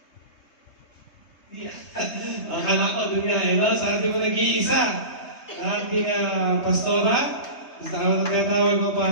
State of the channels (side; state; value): right; late; 3.3 ms